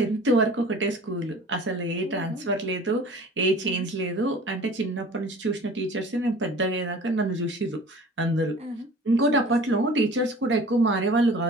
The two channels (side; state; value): both; normal; correlation 0.44